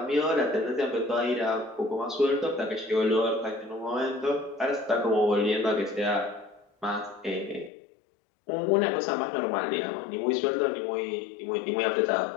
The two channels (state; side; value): drops out; right; at 7.7 s